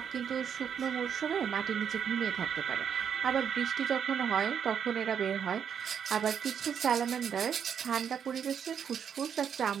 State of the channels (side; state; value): left; quieter; 7.9 dB